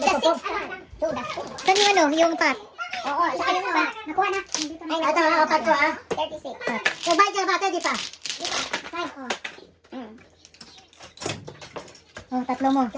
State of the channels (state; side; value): identical; both; correlation 1.00